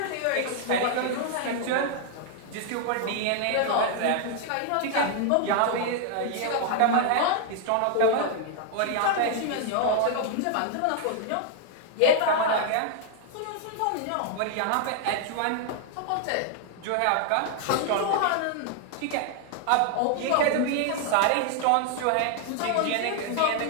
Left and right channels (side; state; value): both; different; correlation 0.00